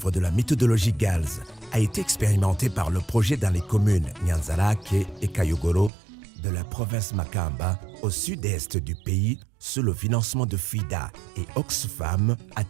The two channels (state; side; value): drops out; left; at 5.9 s